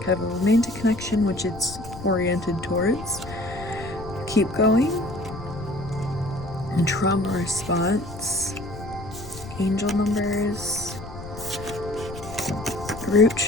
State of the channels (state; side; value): noise; left; rumble, 13 dB below the sound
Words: kind of a romantic connection, which it's oriented towards. Keep going. And trauma response. Angel numbers. Root